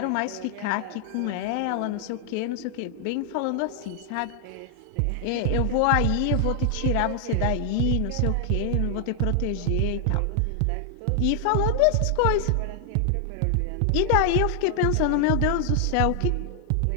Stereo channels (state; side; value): different; both; correlation 0.00